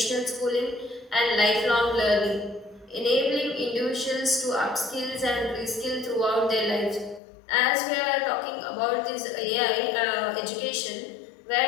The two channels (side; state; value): right; drops out; at 7.2 s